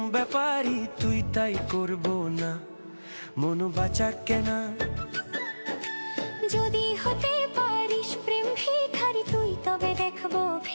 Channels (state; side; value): inverted; both; correlation -1.00